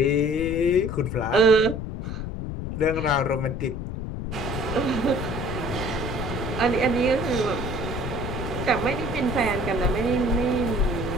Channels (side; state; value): left; noise; rumble, 5 dB below the sound